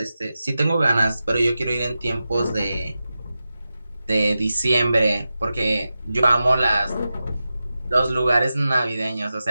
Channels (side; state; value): both; inverted; correlation -0.93